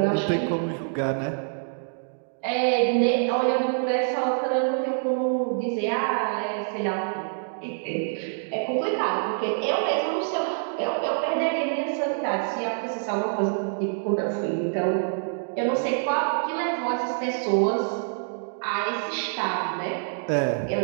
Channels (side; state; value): left; silent; digital silence